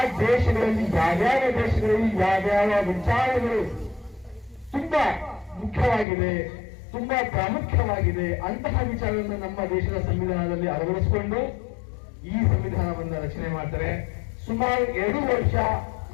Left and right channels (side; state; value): right; drops out; at 6.1 s